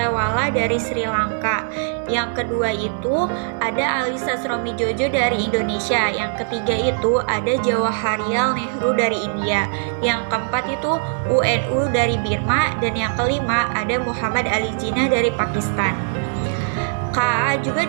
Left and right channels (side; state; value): left; silent; digital silence